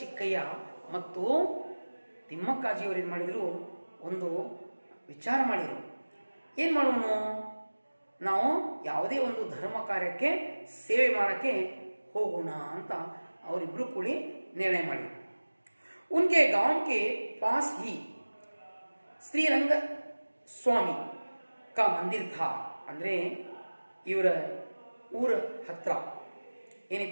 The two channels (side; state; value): both; inverted; correlation -1.00